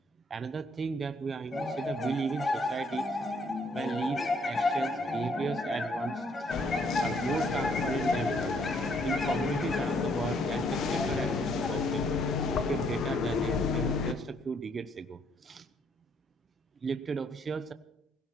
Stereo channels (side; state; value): both; normal; correlation 0.68